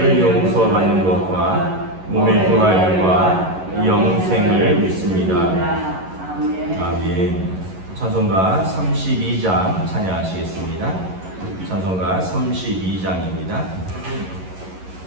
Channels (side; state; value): left; late; 11 ms